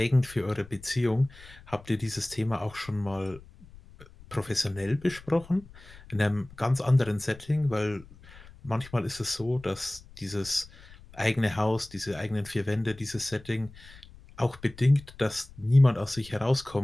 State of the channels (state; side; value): noise; left; rumble, 21 dB below the sound